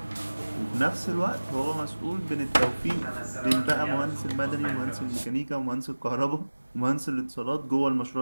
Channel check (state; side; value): inverted; both; correlation -1.00